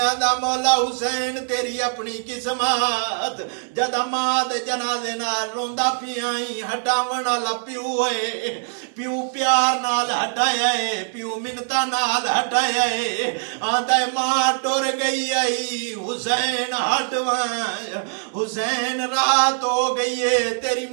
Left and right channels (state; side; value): silent; left; digital silence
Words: آدھا مولا حسین تیری اپنی قسمت، جدا ماں دے جنازے نال روندا پیائی، ہٹاون والا پیو ہے، پیو پیار نال ہٹایا ہے، پیو منتا نال ہٹایا ہے، آدھا ماں ٹور گئی آئی حسین ہٹوائیں، حسین رات ہو گئی ہے تیری